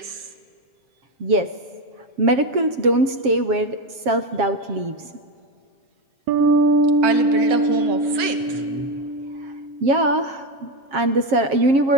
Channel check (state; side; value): late; left; 7.4 ms